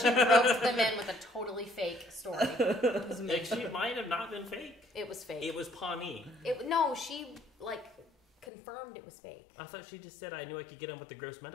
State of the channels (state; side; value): drops out; right; at 8.5 s